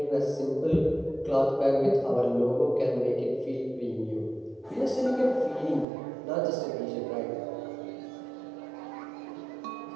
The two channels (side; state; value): left; drops out; at 5.9 s